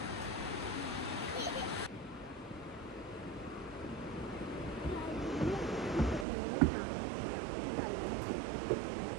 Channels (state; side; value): drops out; left; at 6.2 s